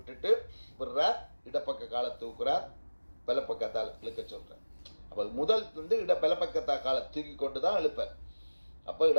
விடுறார். இடப்பக்க காலை தூக்குறார். வலப்பக்கத்தால் இழுக்க சொல்றேன். அப்ப முதல் வந்து வலப்பக்கத்தா காலை தூக்கி கொண்டுதான் எழுப்பார். அப்ப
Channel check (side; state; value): both; inverted; correlation -1.00